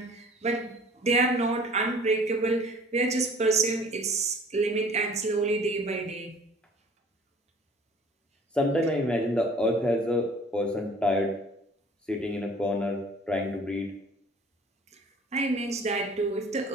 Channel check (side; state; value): both; normal; correlation 0.50